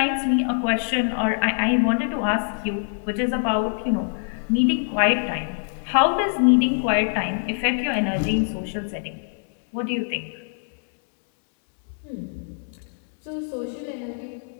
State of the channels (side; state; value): right; silent; 63 dB below the other